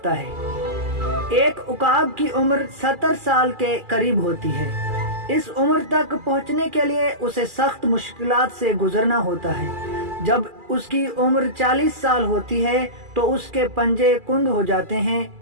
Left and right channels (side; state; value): left; late; 2.4 ms